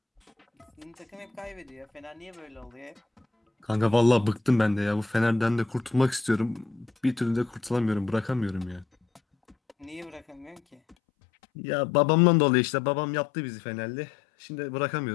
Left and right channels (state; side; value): drops out; right; at 11.0 s